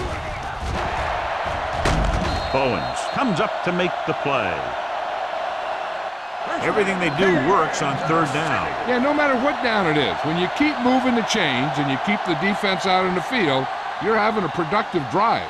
Bowens comes up to make the play. Everything they do works on third down. Yeah, no matter what down it is, when you keep moving the chains and you keep the defense out in the field, you're having a productive drive.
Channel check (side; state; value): both; identical; correlation 1.00